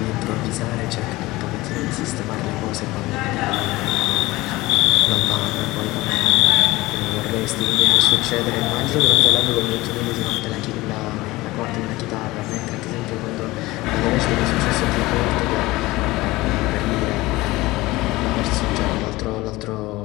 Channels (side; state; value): right; quieter; 19.7 dB